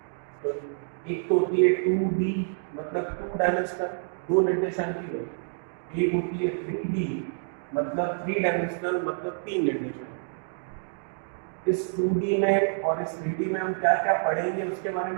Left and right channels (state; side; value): silent; left; digital silence